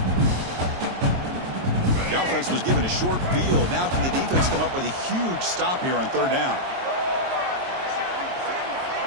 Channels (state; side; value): late; left; 22 ms